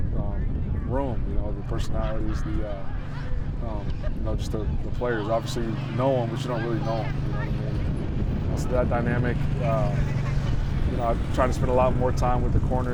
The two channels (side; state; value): both; identical; correlation 1.00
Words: room. The personalities, just the players. Obviously, you know them, but you don't really know them. You know what I mean? So that dynamic. I try to spend a lot more time with the